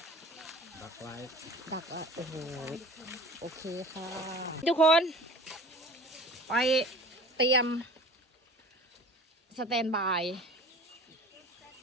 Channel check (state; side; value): normal; both; correlation 0.42